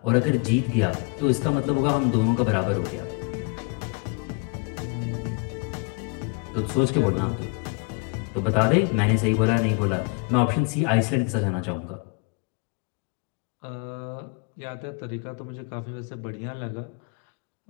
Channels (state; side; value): quieter; right; 30.2 dB